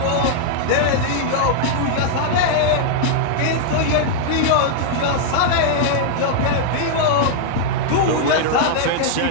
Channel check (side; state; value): both; different; correlation -0.01